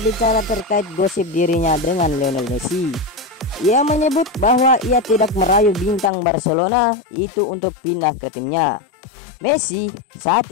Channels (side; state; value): right; drops out; at 6.1 s